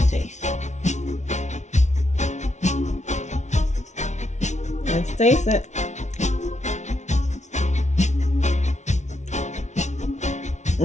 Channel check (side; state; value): right; late; 0.33 ms